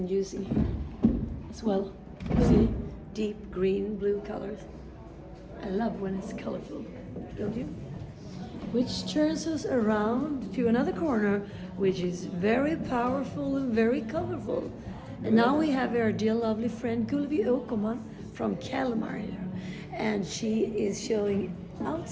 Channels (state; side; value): identical; both; correlation 1.00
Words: using here as well. See, deep green, blue colors. I love when it's colorful, don't you? Which turns us around to another corner, which is very powerful and very colorful. And now we have our dear lovely friend Gulvi Åkerman from Kalmar here. And she is showing